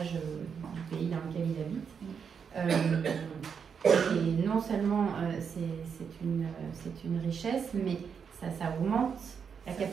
du pays dans lequel il habite. Et non seulement c'est une richesse, mais ça augmente la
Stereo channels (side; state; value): left; quieter; 6.7 dB